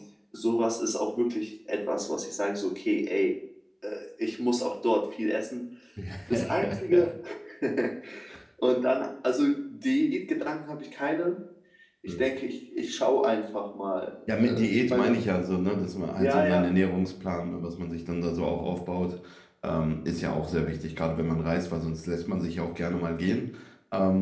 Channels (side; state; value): both; identical; correlation 1.00